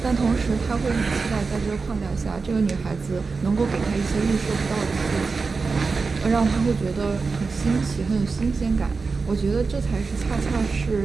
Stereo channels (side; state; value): left; quieter; 4.4 dB